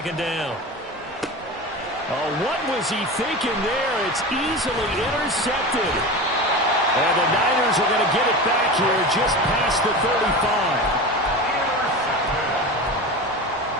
down. Oh, what was he thinking there? It's easily intercepted. And the Niners are going to get it back here just past the 35.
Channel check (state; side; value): normal; both; correlation 0.28